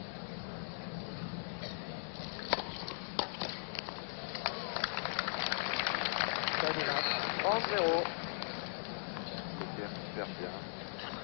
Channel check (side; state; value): right; silent; digital silence